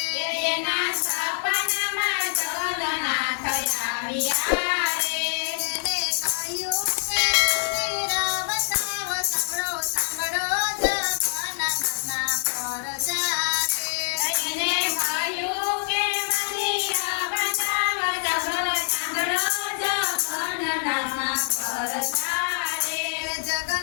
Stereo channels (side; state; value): right; silent; digital silence